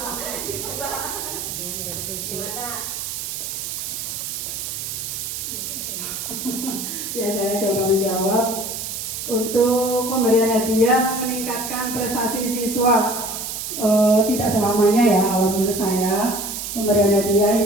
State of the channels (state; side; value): noise; right; hiss, 5 dB below the sound